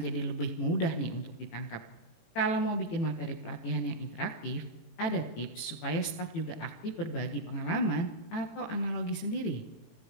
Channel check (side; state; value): right; late; 18 ms